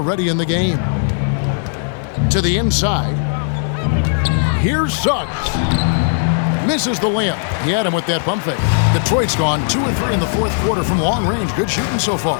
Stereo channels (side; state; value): right; silent; 64 dB below the other